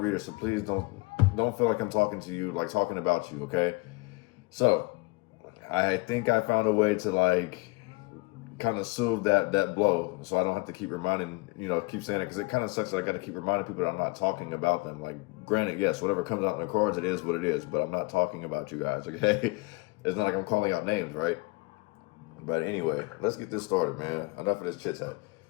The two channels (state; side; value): quieter; right; 25.8 dB